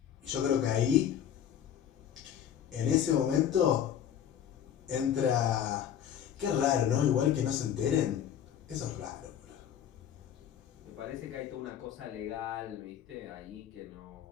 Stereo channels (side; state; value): right; quieter; 9.6 dB